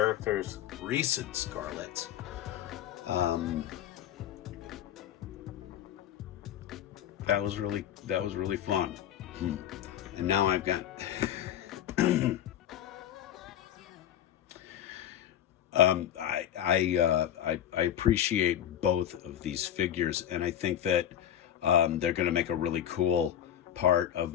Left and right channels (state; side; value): quieter; right; 10.7 dB